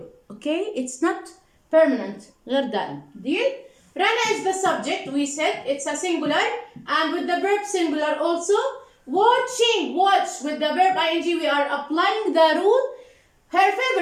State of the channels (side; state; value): both; identical; correlation 1.00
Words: okay? It's not permanent. غير دائم. Deal? Rana is the subject, we said, it's a singular, and with the verb singular also. Watching, watch, with the verb ing, we are applying the rule. Her